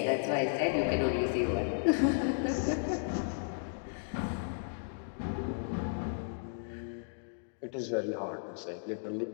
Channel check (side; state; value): right; silent; digital silence